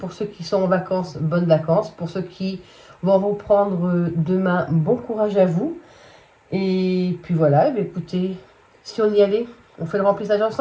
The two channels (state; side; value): identical; both; correlation 1.00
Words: ceux qui sont en vacances, bonnes vacances. Pour ceux qui vont reprendre demain, bon courage à vous. Et puis voilà, écoutez, si on y allait, on fait le remplissage